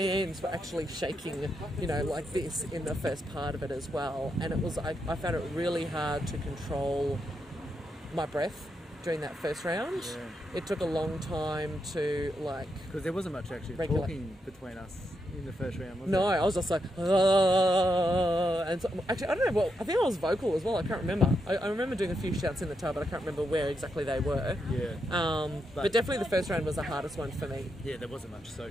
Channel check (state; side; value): normal; both; correlation 0.82